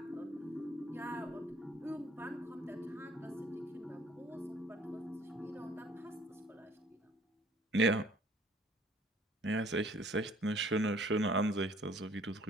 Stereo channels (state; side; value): normal; both; correlation 0.57